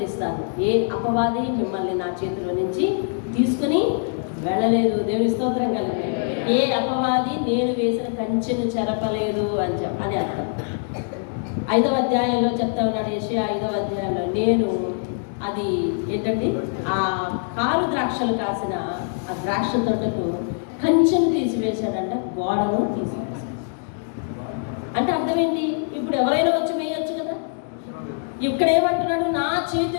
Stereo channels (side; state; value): right; silent; digital silence